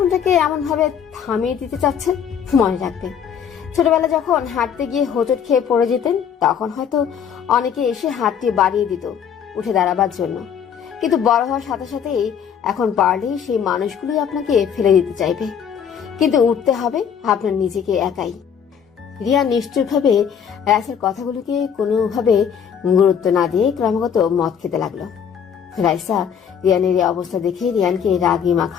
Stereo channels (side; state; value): right; quieter; 7.9 dB